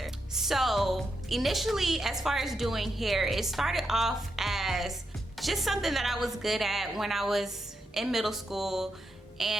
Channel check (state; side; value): normal; both; correlation 0.84